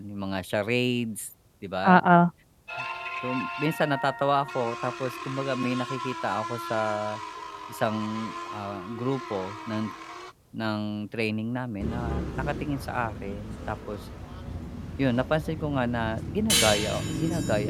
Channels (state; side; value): identical; both; correlation 1.00